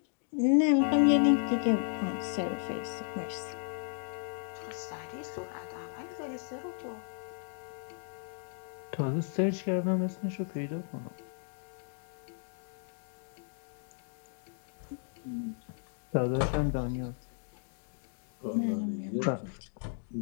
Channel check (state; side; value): silent; right; 55 dB below the other